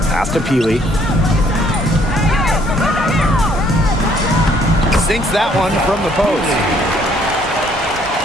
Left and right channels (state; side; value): normal; both; correlation 0.64